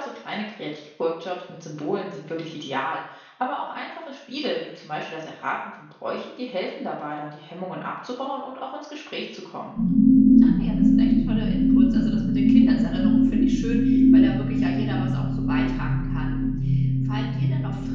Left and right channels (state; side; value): identical; both; correlation 1.00